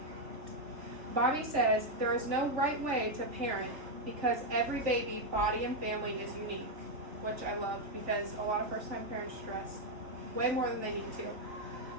Bobby says there is no right way to parent because every baby, body, and family is unique, which I loved because a lot of first-time parents stress way more than they need to.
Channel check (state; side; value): late; left; 3.4 ms